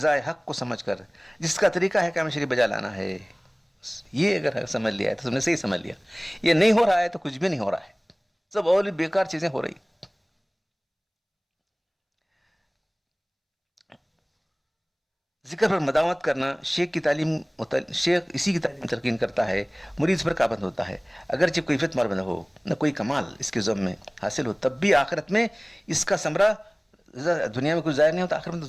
حق کو سمجھ کر جس کا طریقہ ہے کام شریف بجا لانا ہے. یہ اگر سمجھ لیا ہے تو تم نے صحیح سمجھ لیا. یہ نہیں ہو رہا ہے تو کچھ بھی نہیں ہو رہا ہے, سب اور بیکار چیزیں ہو رہی. ذکر پر مداومت کرنا, شیخ کی تعلیم, شیخ اسی کی تعلیم تلقین کرتا ہے, مرید پر پابند ہوتا ہے. اگرچہ کوئی فتح مربند ہو, نہ کوئی کمال اس کے ذم میں حاصل ہو, تب بھی آخرت میں اس کا ثمرہ دنیا میں کچھ ظاہر نہیں ہوتا, آخرت میں تو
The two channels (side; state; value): both; identical; correlation 1.00